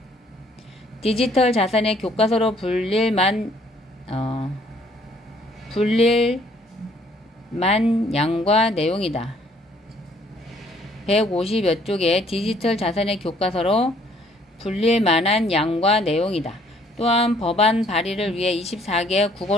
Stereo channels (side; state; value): both; normal; correlation 0.62